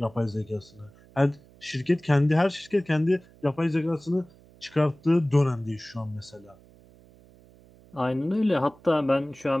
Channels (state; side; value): noise; right; hum, 26 dB below the sound